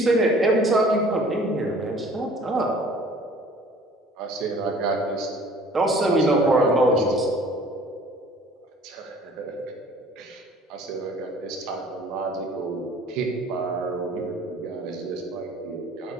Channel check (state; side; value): normal; both; correlation 0.51